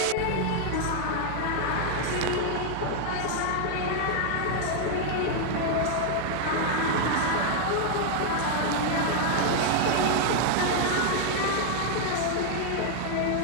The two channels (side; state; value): both; different; correlation 0.00